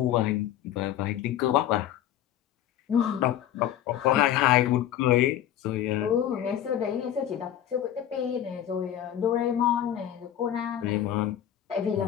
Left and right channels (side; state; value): right; quieter; 11.1 dB